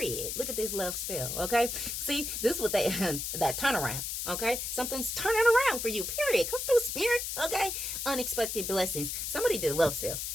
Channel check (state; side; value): noise; left; hiss, 3 dB below the sound